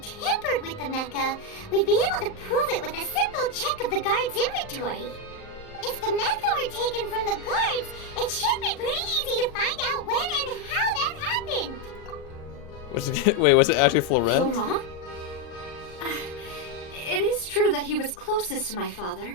tampered with the mecha, we'd be able to prove it with a simple check of the guard's inventory. If the mecha were taken from the guards, it should be pretty easy to find out when and how that happened. Was it actually Florent? Laurent? It is true that he was closest to my father,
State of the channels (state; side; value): late; right; 38 ms